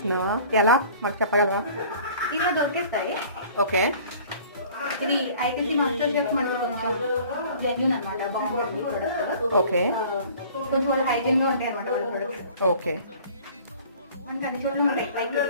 ఎలా మాకు చెప్పగలవా? ఇలా దొరికేస్తాయి. ఓకే. ఇది ఐటీసీ మాస్టర్ షెఫ్ మనకి కొంచెం జెన్యూన్ అనమాట, బాగుంటుంది ప్రొడక్ట్. ఓకే. కొంచెం వాళ్ళు హైజీన్ గా ఉంటాయి అనమాట వాళ్ళ ప్రొడక్ట్స్. ఓకే. మనకి అన్ని చోట్ల ఉంటాయి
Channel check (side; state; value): both; inverted; correlation -0.48